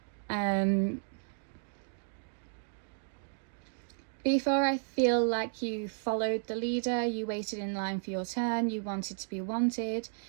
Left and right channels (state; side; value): silent; left; digital silence